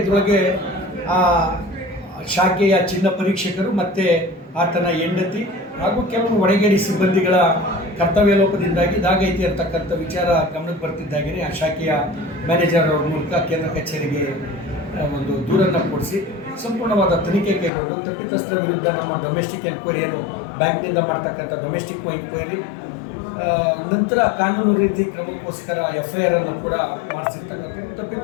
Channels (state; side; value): drops out; right; at 17.7 s